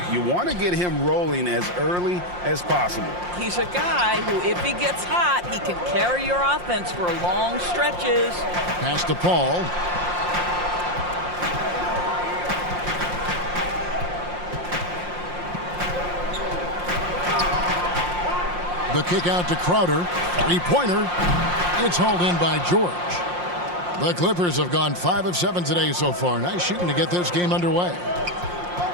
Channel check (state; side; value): late; left; 5.7 ms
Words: You want to get him rolling as early as possible. He's a guy who, if he gets hot, he can carry your offense for long stretches. Pass to Paul. The kick out to Crowder. Three-pointer. It's hauled in by George. The Clippers have gone 5 of 7 today so far. Nice shooting to get this game underway.